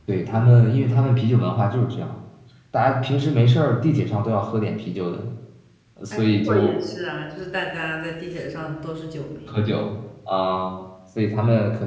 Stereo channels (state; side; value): identical; both; correlation 1.00